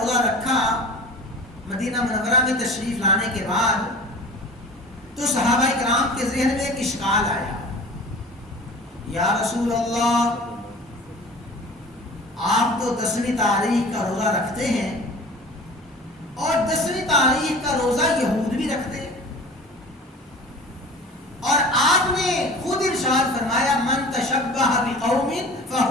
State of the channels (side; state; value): both; normal; correlation 0.41